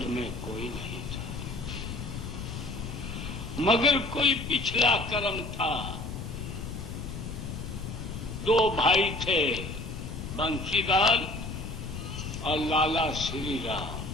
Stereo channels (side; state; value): left; noise; rumble, 7 dB below the sound